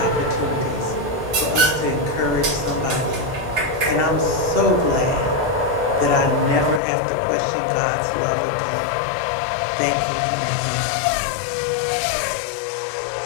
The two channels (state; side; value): drops out; right; at 6.8 s